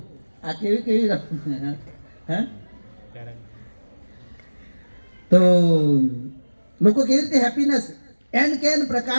આ કેવી કેવી તો લોકો કેવી રીતે હેપીનેસ એન કેન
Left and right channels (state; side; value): inverted; both; correlation -1.00